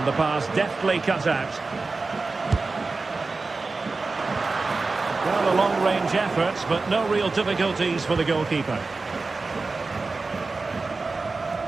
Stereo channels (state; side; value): quieter; left; 3.8 dB